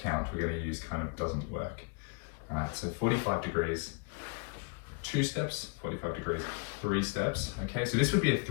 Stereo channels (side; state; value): right; quieter; 35.6 dB